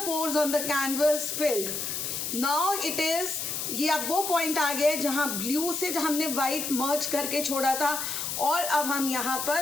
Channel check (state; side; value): noise; left; hiss, 3 dB below the sound